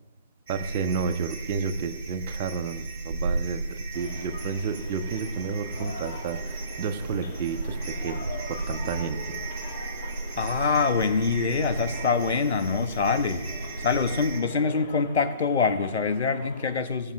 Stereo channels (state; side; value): inverted; both; correlation -0.47